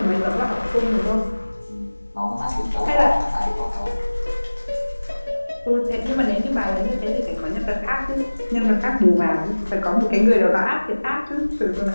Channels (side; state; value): both; inverted; correlation -1.00